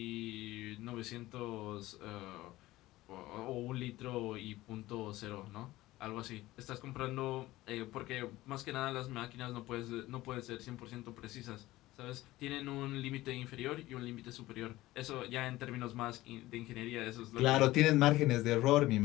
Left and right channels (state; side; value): quieter; right; 17.4 dB